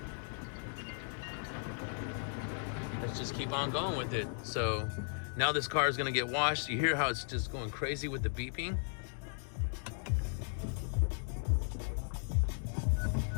let's just keep on going with it. So now this car is gonna get washed. You hear how it's just going crazy with the beeping?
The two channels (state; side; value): silent; right; digital silence